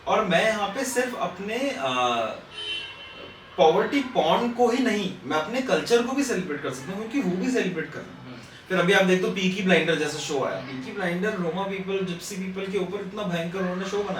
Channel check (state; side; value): identical; both; correlation 1.00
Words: और मैं यहाँ पे सिर्फ अपने पॉवर्टी पॉर्न को ही नहीं, मैं अपने कल्चर को भी सेलिब्रेट कर सकता हूँ, क्योंकि वो भी सेलिब्रेट कर रहे हैं। फिर अभी आप देखो पीकी ब्लाइंडर जैसा शो आया, Peaky blinder Roma people, Gypsy people के ऊपर इतना भयंकर उन्होंने शो